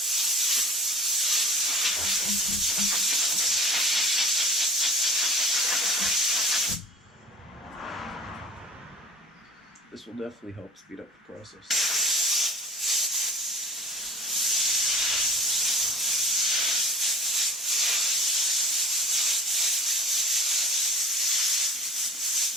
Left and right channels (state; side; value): normal; both; correlation 0.40